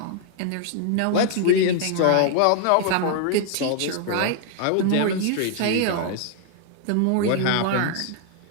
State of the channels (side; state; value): both; different; correlation 0.00